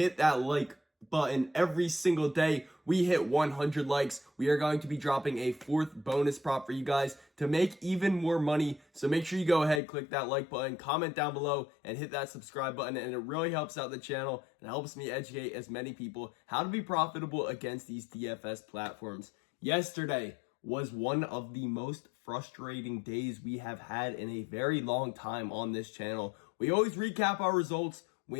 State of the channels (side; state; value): right; drops out; at 9.8 s